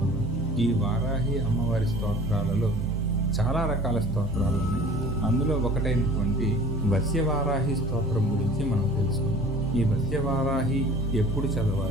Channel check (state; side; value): normal; both; correlation 0.46